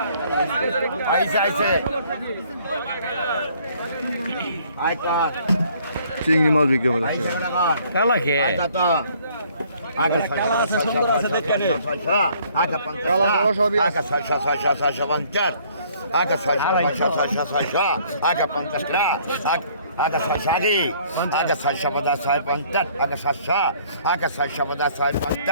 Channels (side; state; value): both; inverted; correlation -0.60